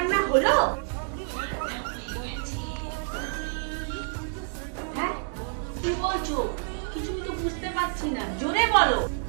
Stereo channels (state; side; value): silent; left; digital silence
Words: হলো? হ্যাঁ, কি বলছো? কিছুই তো বুঝতে পারছি না, জোরে বলো।